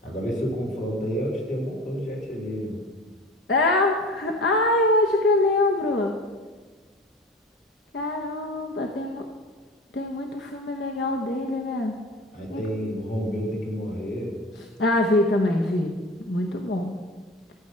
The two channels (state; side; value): normal; both; correlation 0.37